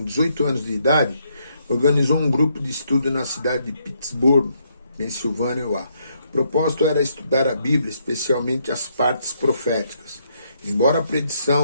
18 anos de idade, organizou um grupo de estudo na cidade de Pittsburgh, Pensilvânia. O propósito era estudar a Bíblia, especialmente as partes proféticas. Embora a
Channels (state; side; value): inverted; both; correlation -0.74